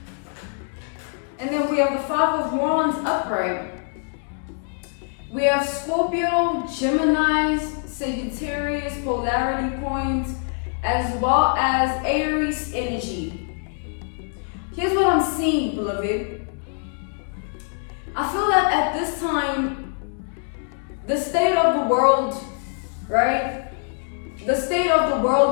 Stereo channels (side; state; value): right; silent; 61 dB below the other